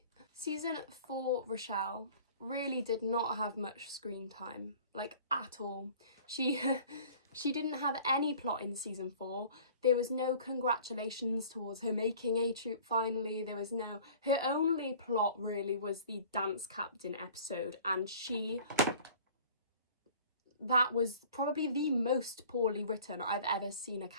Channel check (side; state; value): both; inverted; correlation -0.47